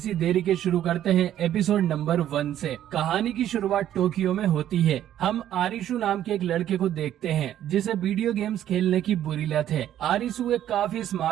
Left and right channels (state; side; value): quieter; left; 11.5 dB